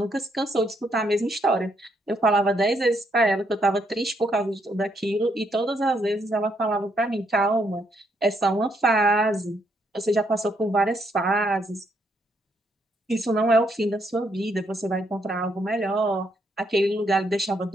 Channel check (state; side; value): normal; both; correlation 0.75